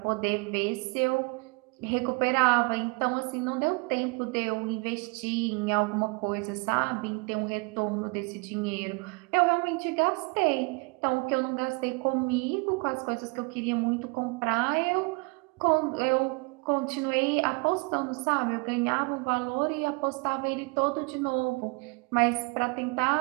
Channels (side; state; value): left; quieter; 30.3 dB